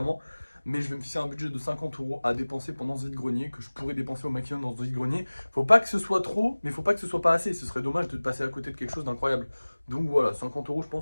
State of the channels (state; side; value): inverted; both; correlation -1.00